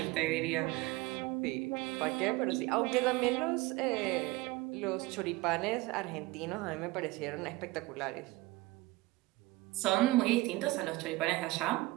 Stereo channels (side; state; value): left; quieter; 20.7 dB